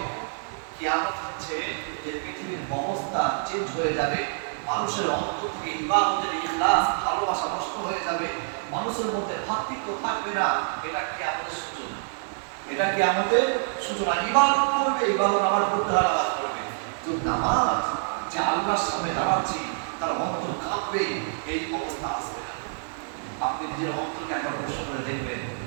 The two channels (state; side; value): silent; left; 60 dB below the other